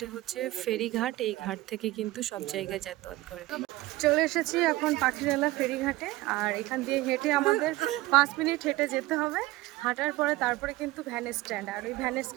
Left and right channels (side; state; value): left; quieter; 18.6 dB